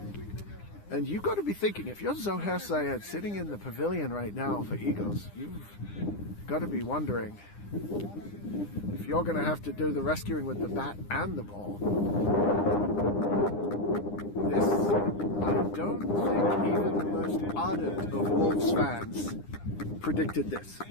And you've got to be thinking, if you're Zohair Syed sitting in the pavilion right now for Eagles, you've got to be wondering if you're going to have to do the rescuing with the bat and the ball. This, I don't think even the most ardent of Wolves fans predicted this.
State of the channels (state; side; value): late; right; 9.9 ms